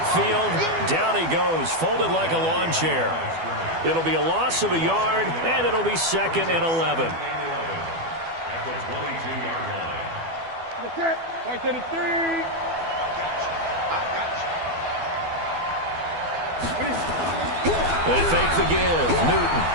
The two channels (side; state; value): left; late; 12 ms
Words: Down he goes, folded like a lawn chair. It'll be a loss of a yard, and it'll be 2nd and 11. At the 22-yard line. That's it. Right to the 3. I got you. They fake the give. Newton